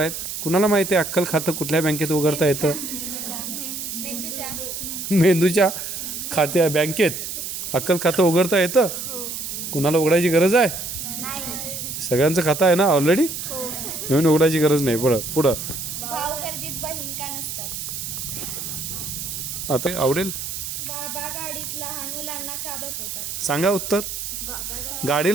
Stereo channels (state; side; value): noise; right; hiss, 6 dB below the sound